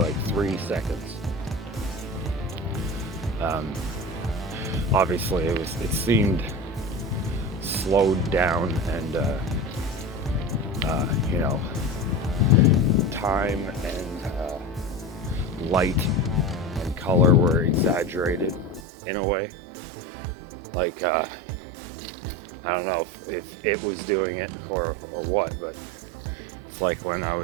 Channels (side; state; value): left; drops out; at 18.8 s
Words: 3 seconds. Obviously it seemed slowed down, and you know, time and light and color were exaggerated in a way. Like I don't know if it was doing it or what, but it's like when I